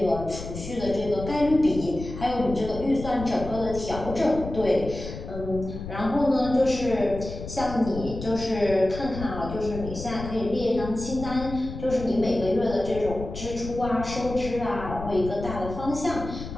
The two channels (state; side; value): noise; left; rumble, 9 dB below the sound